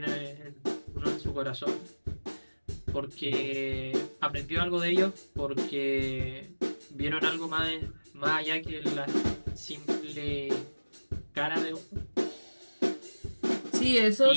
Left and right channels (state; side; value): inverted; both; correlation -1.00